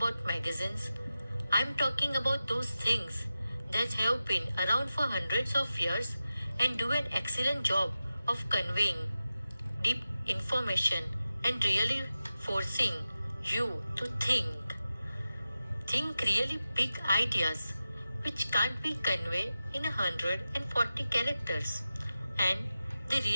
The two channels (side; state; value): both; inverted; correlation -0.93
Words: magazines. I'm talking about those things that have been around for hundreds of years and do an excellent job of conveying deep information and really forcing you to think. Think really big ideas which can't be conveyed in 140 characters and they